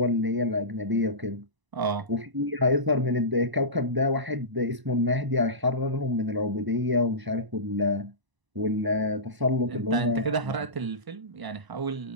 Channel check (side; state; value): left; late; 1.0 ms